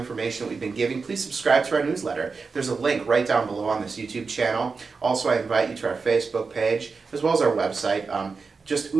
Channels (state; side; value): quieter; left; 4.7 dB